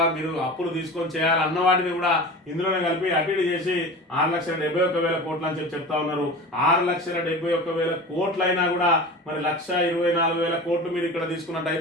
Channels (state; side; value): normal; both; correlation 0.33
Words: మీరు అప్పులు తీసుకొని చేయాలి అన్న వాటిని కూడా ఇందులోనే కలిపి అటు చేసి 6,71,000 కోట్లు అని చెప్తా ఉన్నారు. 6,71,000 కోట్లైనా కూడా మరి 1,24,000 కోట్లు మీరు ఇక్కడ